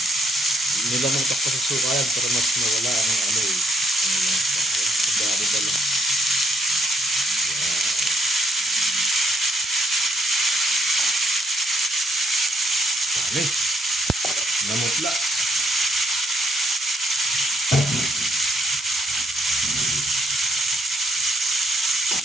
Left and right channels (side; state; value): both; normal; correlation 0.75